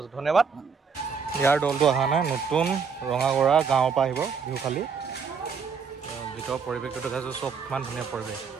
ধন্যবাদ ইয়াৰ দলটো অহা নাই নতুন ৰঙাগৰা গাঁৱৰ পৰা আহিব বিহু খালি ভিতৰৰ পৰিৱেশটো দেখাইছোঁ চব ইমান ধুনীয়া পৰিৱেশ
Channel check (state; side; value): quieter; left; 5.9 dB